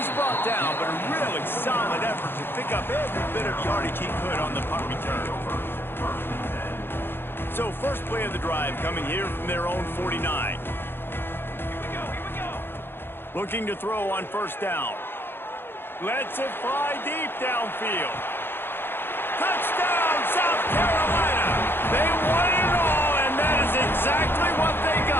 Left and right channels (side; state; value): right; late; 0.10 ms